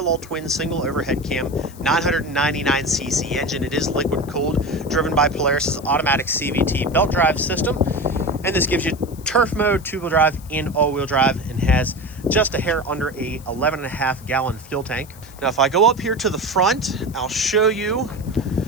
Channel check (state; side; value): noise; left; hiss, 22 dB below the sound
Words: twin single overhead cam 999cc engine. It is liquid cooled, driven by Polaris's automatic CVT belt drive system. And this gives you turf mode, two-wheel drive, and all-wheel drive, and has just a hair under a 11.5 gallon fuel tank. Now, if I go up here to the front, I'll show you.